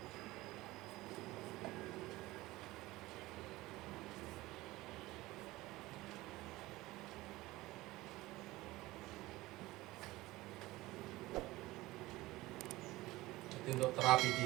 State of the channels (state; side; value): quieter; left; 18.9 dB